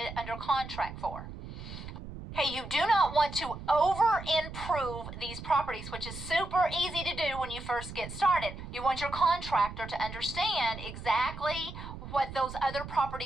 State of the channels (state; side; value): noise; right; rumble, 11 dB below the sound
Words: under contract for. Okay, you do not want to over-improve these properties, which is super easy to do when you first get started. You want your contractor to understand exactly what those other